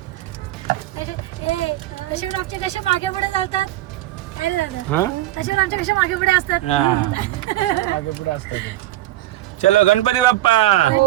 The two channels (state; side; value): quieter; left; 15.6 dB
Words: आमचे कसे मागे पुढे जातात काय रे दादा. तसे आमचे कसे मागे पुढे असतात. मागे पुढे असतात. चलो गणपती बाप्पा.